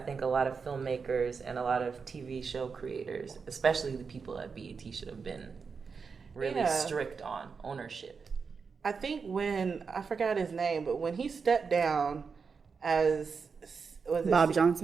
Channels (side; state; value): left; quieter; 5.4 dB